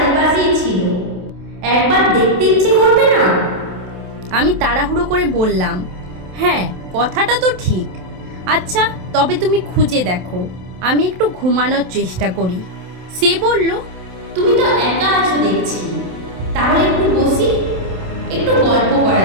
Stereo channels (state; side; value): late; left; 27 ms